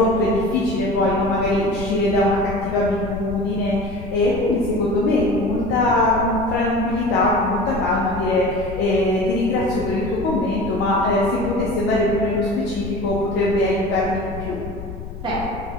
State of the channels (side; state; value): left; noise; rumble, 11 dB below the sound